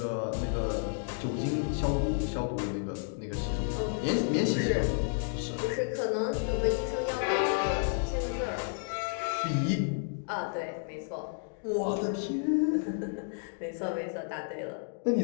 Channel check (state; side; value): silent; right; digital silence